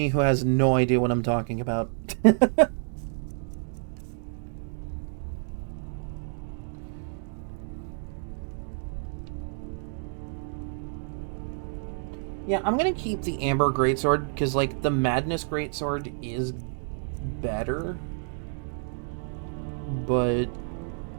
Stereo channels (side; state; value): left; silent; 59 dB below the other